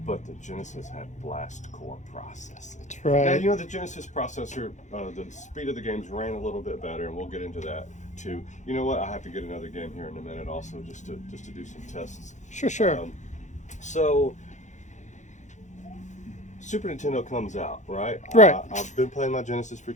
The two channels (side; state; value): right; late; 0.35 ms